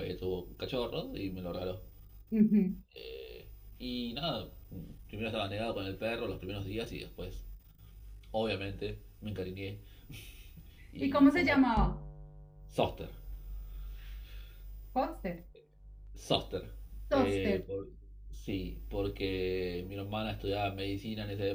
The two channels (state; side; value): identical; both; correlation 1.00